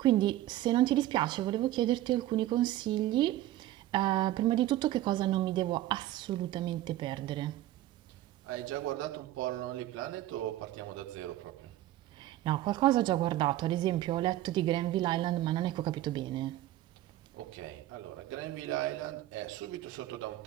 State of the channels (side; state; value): left; quieter; 14.7 dB